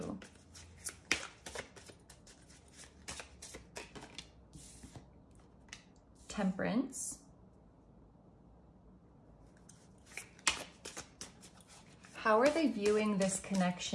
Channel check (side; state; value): both; identical; correlation 1.00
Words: Temperance. How are they viewing this